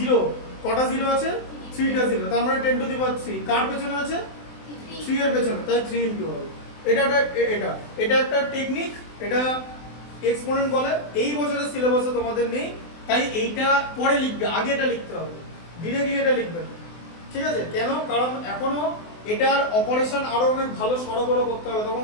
কটা জিরো আছে 3টা জিরো, তার মানে 10 টু দি পাওয়ার 3 কার পেছনে আছে 3 এর পেছনে, তাই 3 ইনটু হবে। এটা একটা টেকনিক, এটা এক্সপোনেন্ট বলে। এই বছরের সিলেবাসে তোমাদের নেই, তাই এইটা পরে লিখবে, আগে এটা লিখতে হবে, ডিরেক্টলি এটা লিখবে না। ঠিক আছে, কেন? কারণ এখনো এটার অপারেশন আরো অনেক ভালো সরগরম করতে হবে, তখন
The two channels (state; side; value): late; right; 24 ms